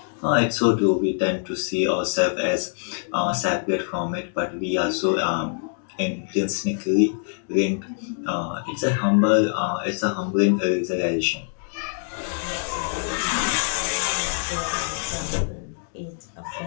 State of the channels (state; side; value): silent; right; digital silence